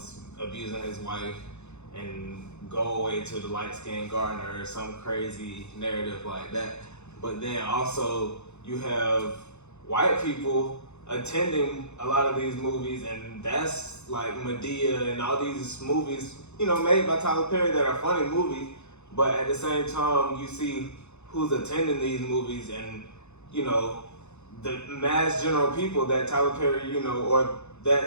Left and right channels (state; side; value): late; right; 0.81 ms